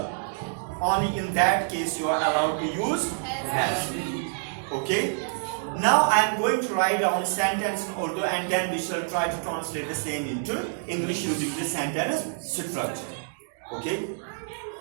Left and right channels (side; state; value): left; silent; digital silence